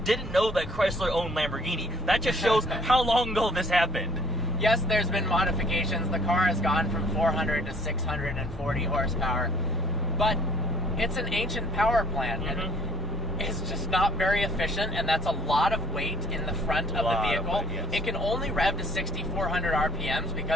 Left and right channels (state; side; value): normal; both; correlation 0.57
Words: didn't know that Chrysler owned Lamborghini. That just shows how long ago this happened. Yes, there's been modifications. The car has gone from 400 to 640 horsepower, but it's an ancient power plant, and it's just not very efficient, and that's a lot of weight in the front of the vehicle. It can only rev to 6,400 RPMs